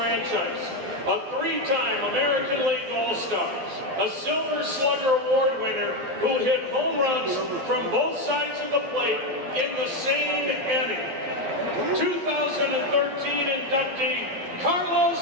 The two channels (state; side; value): late; left; 11 ms